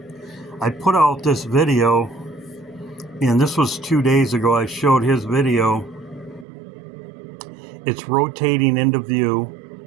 I put out this video, and this was 2 days ago. I showed his video. It's rotating into view.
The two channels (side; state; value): left; drops out; at 6.5 s